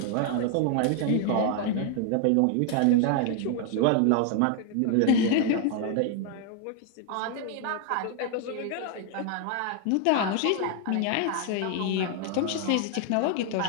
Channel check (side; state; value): both; different; correlation 0.00